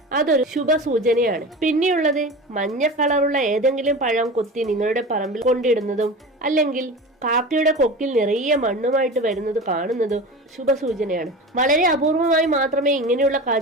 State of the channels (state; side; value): normal; both; correlation 0.31